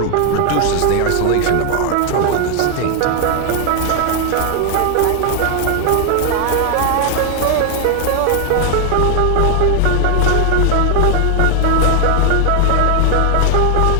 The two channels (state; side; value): different; both; correlation 0.00